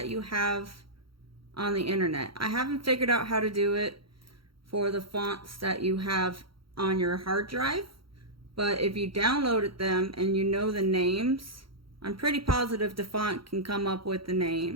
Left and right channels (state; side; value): late; left; 0.74 ms